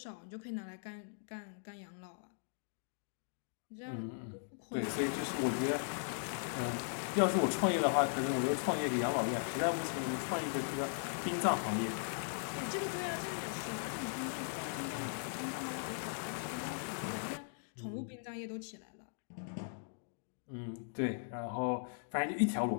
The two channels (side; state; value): right; silent; digital silence